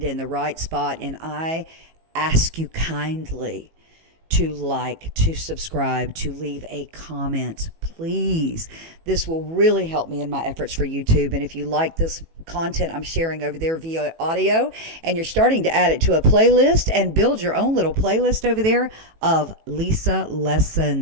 in the right spot. And I ask you kindly to like, to subscribe, to leave a comment, please. This will really help me in my efforts for YouTube. And if you like this content I'm sharing over there via audio, and you're starting to add it to a playlist and build your own little playlist over there of Lisa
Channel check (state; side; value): late; left; 18 ms